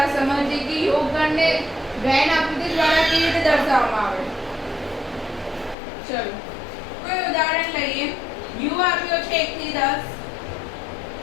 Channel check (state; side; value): drops out; right; at 5.8 s